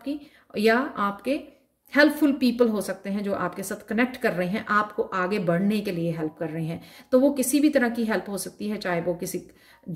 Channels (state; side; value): identical; both; correlation 1.00